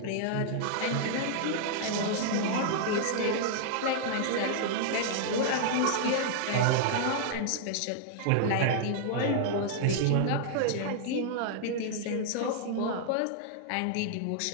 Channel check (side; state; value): both; different; correlation -0.01